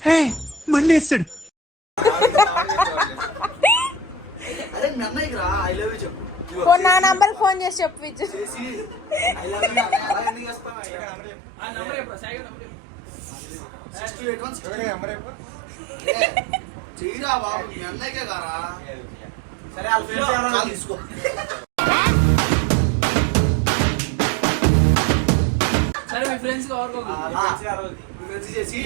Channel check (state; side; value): drops out; left; at 10.8 s